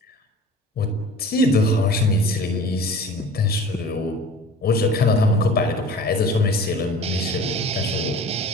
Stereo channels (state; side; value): normal; both; correlation 0.42